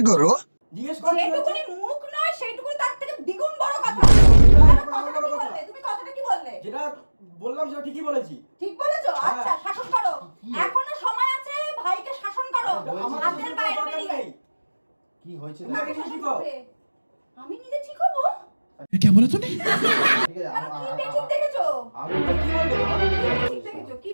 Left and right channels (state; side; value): inverted; both; correlation -1.00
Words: करो। জিজ্ঞেস কর কি হয়েছে? যেটুকুনি মুখ নয় সেইটুকুনি তার থেকে দ্বিগুণ বড় কথা। তুমি কথাটা কি বললে? যেটা বললাম সেটা ঠিকই বলেছি। ঠিক বলেছো? আচ্ছা, শাসন করো, এখনো সময় আছে, ভাইকে শাসন করো। আমার হাতের বাইরে বেরিয়ে। কি হয়েছে? তুমি আগে ঠিক হও। আমি নিজে ঠিক হবো? क्या बोला तूने? ঠিক আছে কি বেঠিক দেখেছো? আমি কি বলবো? কি দেখেছো? কি